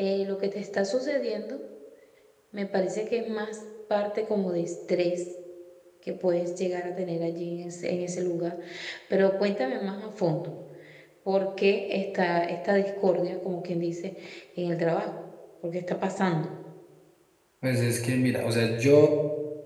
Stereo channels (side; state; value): both; identical; correlation 1.00